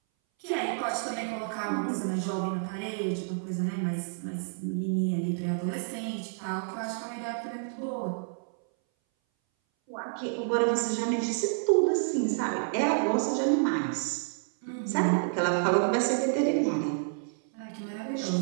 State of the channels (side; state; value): left; silent; 58 dB below the other